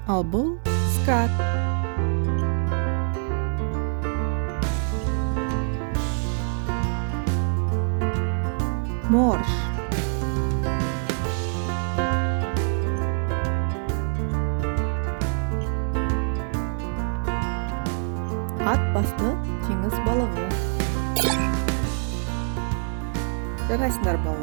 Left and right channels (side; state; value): left; silent; 62 dB below the other